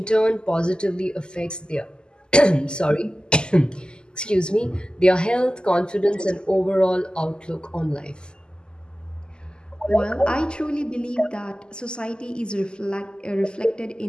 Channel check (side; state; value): right; late; 0.047 ms